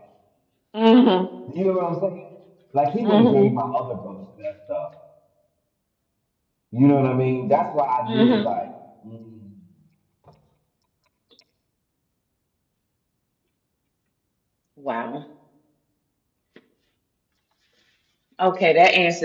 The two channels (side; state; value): both; identical; correlation 1.00